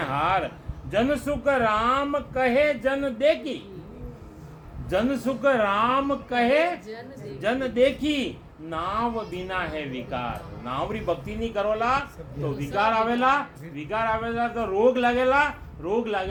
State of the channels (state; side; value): identical; both; correlation 1.00